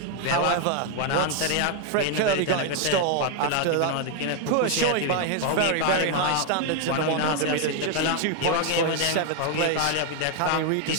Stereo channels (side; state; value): both; different; correlation 0.01